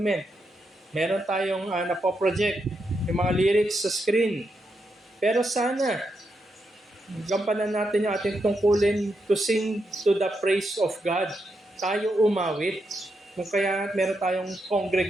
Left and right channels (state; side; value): normal; both; correlation 0.83